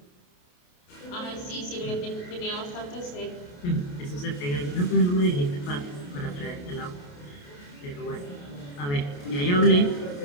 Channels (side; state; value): right; late; 28 ms